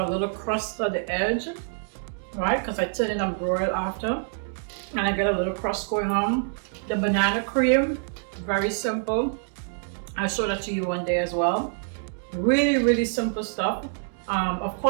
a little crust on the edge, right? Because I turn it on broil after, and I get a little crust going on. The banana cream, very simple. I'll show that to you one day as well. Really, really simple stuff. Of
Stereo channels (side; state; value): left; silent; digital silence